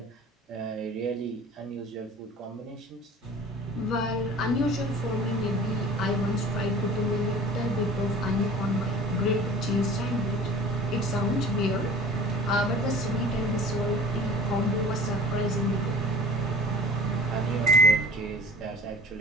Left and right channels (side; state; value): both; normal; correlation 0.43